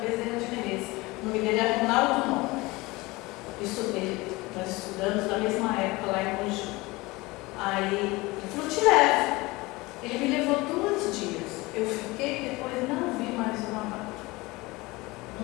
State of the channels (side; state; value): right; quieter; 22.2 dB